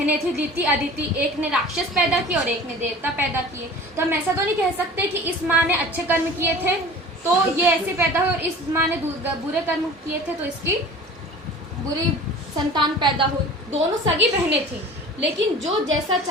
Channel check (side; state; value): both; normal; correlation 0.41